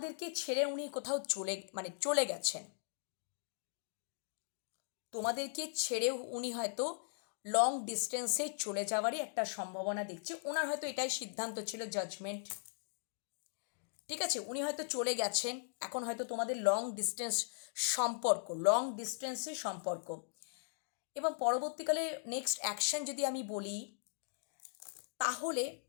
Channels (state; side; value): silent; right; digital silence